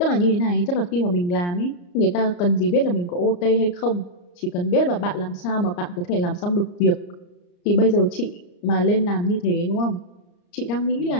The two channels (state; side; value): late; right; 34 ms